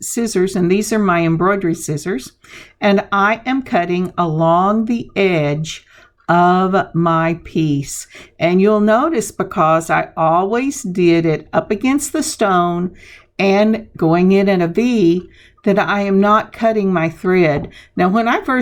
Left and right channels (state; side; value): identical; both; correlation 1.00